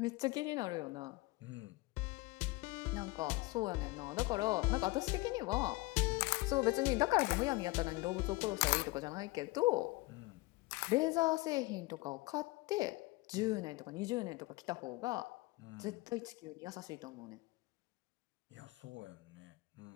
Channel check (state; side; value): quieter; right; 22.2 dB